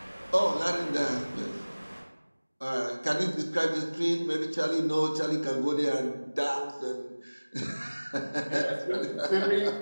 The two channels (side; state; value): both; inverted; correlation -1.00